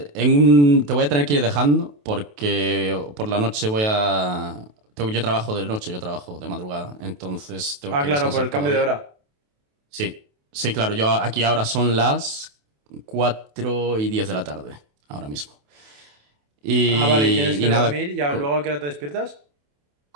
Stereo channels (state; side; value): late; left; 28 ms